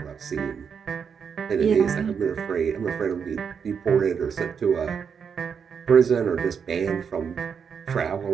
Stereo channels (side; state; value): left; quieter; 6.7 dB